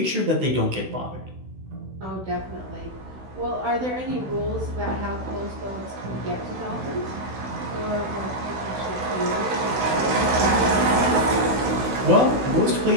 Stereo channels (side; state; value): left; late; 16 ms